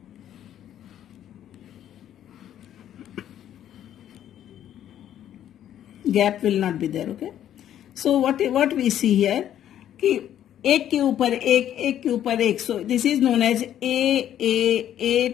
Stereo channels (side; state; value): right; quieter; 10.9 dB